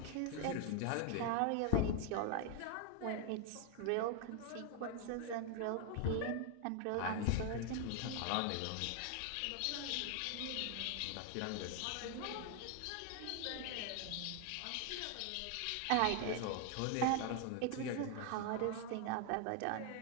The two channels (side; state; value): both; different; correlation 0.00